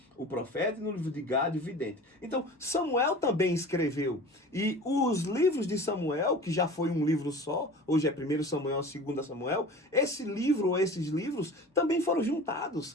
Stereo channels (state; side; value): normal; both; correlation 0.38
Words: o profeta, e no livro de Gad, o vidente. Então, Samuel também escreveu. E os livros de Samuel, que já foi um livro só, hoje é 1 Samuel, 2 Samuel, esse livro ou esses livros também foram juntados